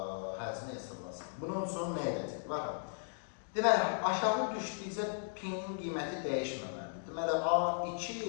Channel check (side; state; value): right; silent; digital silence